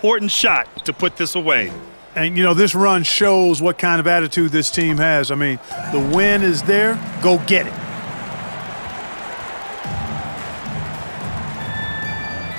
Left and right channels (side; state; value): both; inverted; correlation -1.00